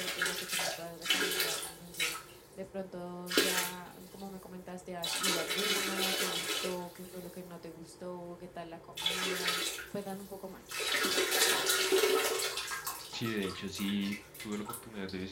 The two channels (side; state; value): both; identical; correlation 1.00